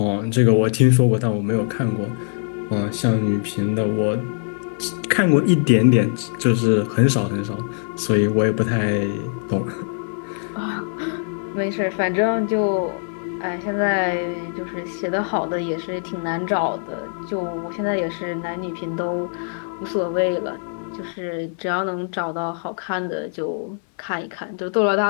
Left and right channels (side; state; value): right; silent; digital silence